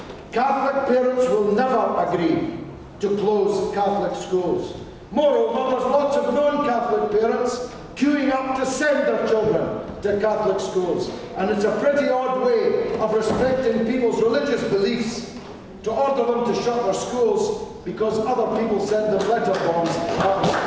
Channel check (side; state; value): both; identical; correlation 1.00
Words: Catholic parents will never agree to close Catholic schools. Moreover, there's lots of non-Catholic parents queuing up to send their children to Catholic schools. And it's a pretty odd way of respecting people's religious beliefs to order them to shut their schools because other people send them letter